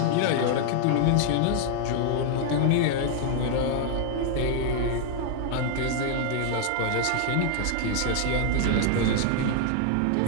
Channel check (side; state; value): both; different; correlation 0.00